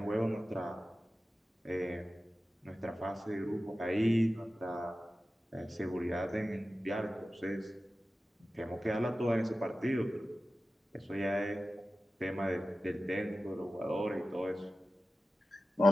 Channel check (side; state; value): both; normal; correlation 0.95